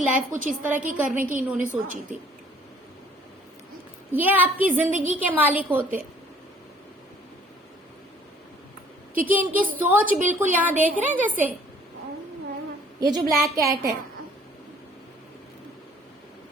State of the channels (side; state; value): both; normal; correlation 0.56